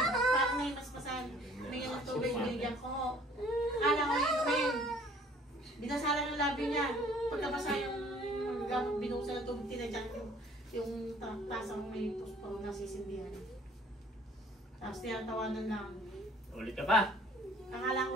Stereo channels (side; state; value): both; normal; correlation 0.55